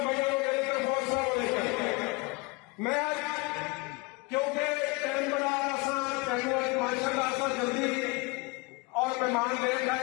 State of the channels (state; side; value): quieter; right; 26.7 dB